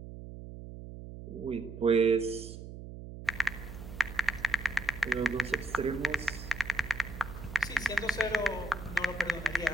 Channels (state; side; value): noise; right; hum, 11 dB below the sound